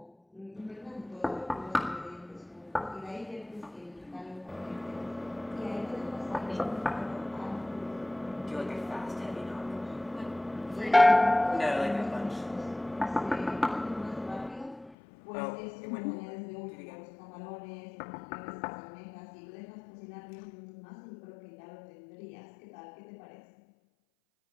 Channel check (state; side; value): drops out; right; at 15.0 s